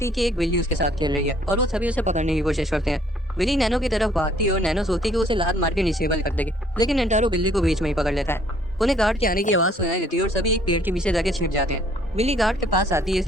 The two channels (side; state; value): both; normal; correlation 0.61